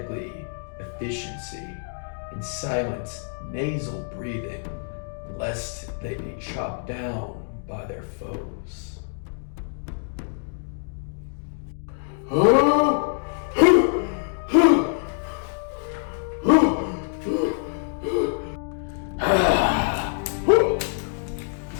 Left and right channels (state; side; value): silent; right; digital silence